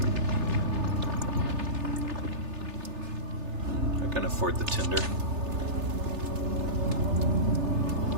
I can afford the tinder.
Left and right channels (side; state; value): left; late; 3.3 ms